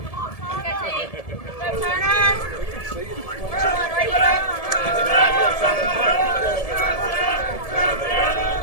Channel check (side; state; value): right; late; 1.7 ms